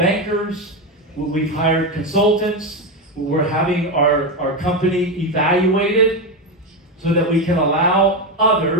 We've hired consultants. We're having our company evaluated so that we can allow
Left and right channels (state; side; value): normal; both; correlation 0.12